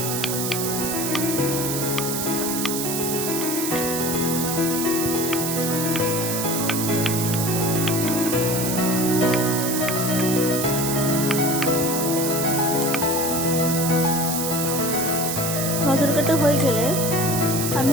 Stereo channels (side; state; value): right; noise; hiss, 2 dB below the sound